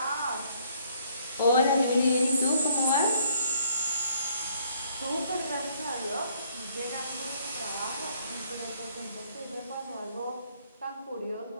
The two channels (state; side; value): inverted; both; correlation -0.65